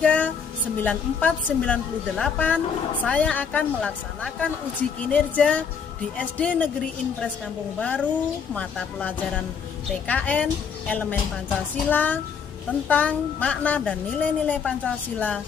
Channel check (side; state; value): right; quieter; 6.5 dB